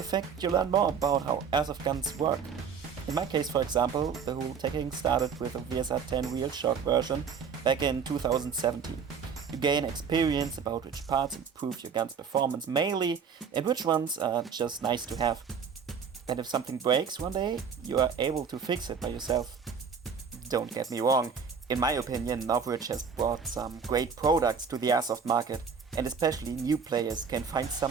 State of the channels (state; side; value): quieter; left; 6.3 dB